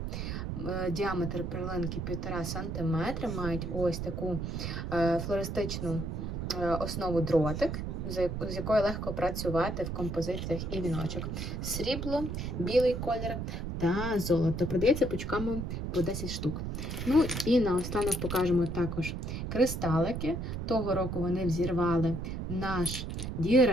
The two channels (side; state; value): right; noise; rumble, 4 dB below the sound